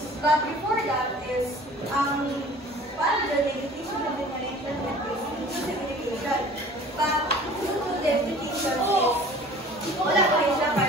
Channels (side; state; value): both; normal; correlation 0.46